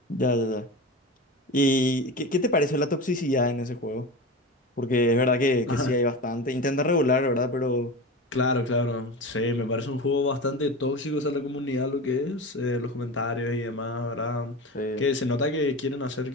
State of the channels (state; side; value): normal; both; correlation 0.27